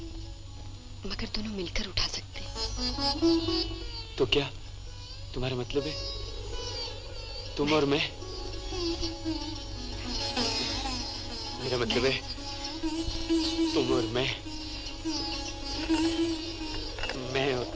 मगर दोनों मिलकर उठा सकते हैं। तो क्या तुम्हारा मतलब है तुम और मैं? मेरा मतलब है तुम और मैं और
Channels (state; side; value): identical; both; correlation 1.00